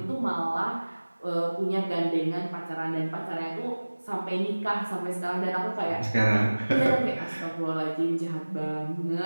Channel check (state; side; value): inverted; both; correlation -1.00